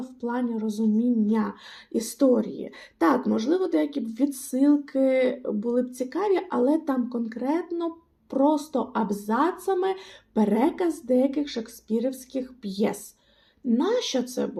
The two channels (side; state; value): both; identical; correlation 1.00